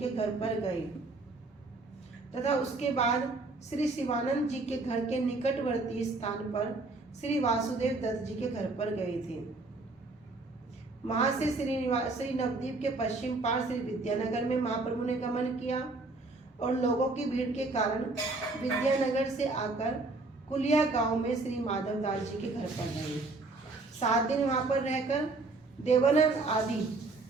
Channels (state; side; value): quieter; left; 3.4 dB